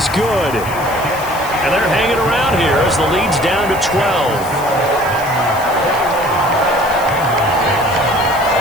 good. And they're hanging around here as the lead's down to 12.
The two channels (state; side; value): noise; left; hiss, 15 dB below the sound